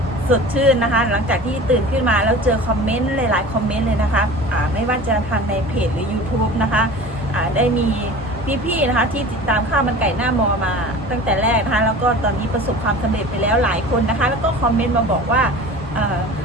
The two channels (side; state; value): both; normal; correlation 0.38